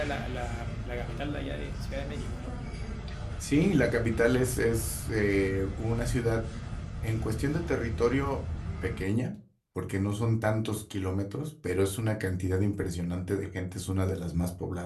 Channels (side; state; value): both; identical; correlation 1.00